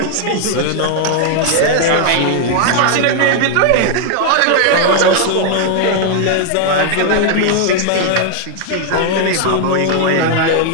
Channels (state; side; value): different; both; correlation 0.00